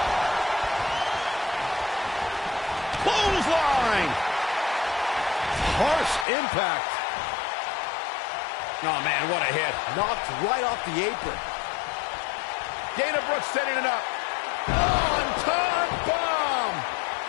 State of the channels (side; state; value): right; drops out; at 6.2 s